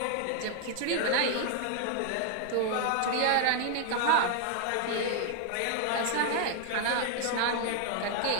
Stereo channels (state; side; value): different; both; correlation 0.00